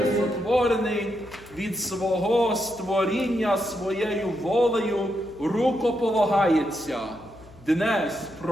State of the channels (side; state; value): left; noise; hum, 23 dB below the sound